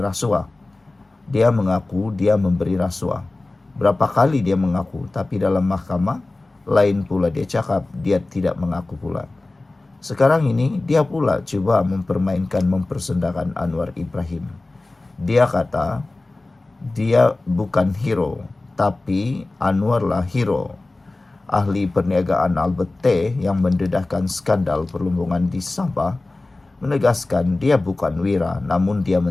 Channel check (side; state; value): right; quieter; 3.0 dB